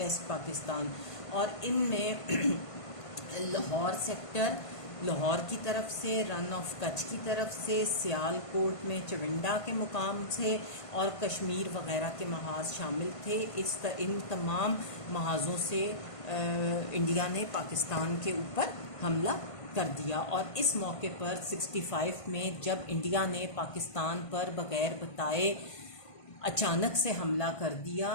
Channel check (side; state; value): right; late; 1.5 ms